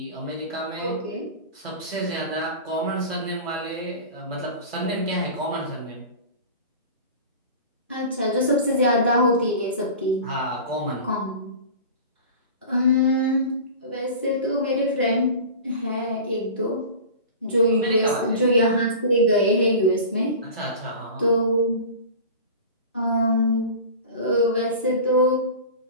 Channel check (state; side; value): inverted; both; correlation -0.35